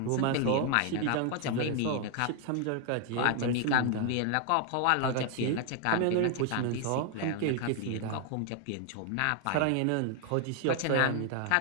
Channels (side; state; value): both; different; correlation 0.00